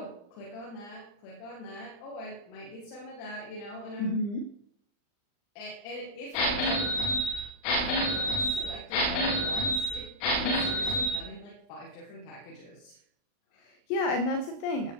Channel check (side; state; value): right; late; 39 ms